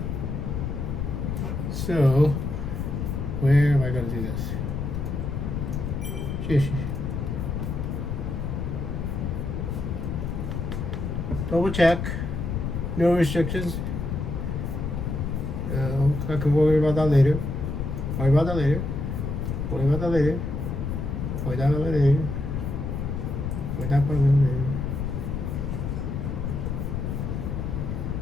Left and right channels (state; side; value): noise; left; rumble, 2 dB below the sound